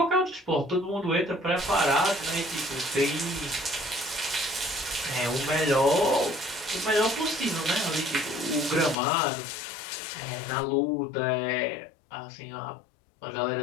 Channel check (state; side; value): drops out; right; at 9.0 s